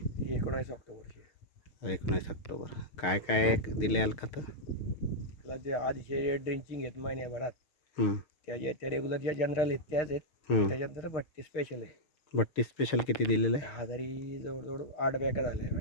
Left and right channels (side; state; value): right; late; 6.5 ms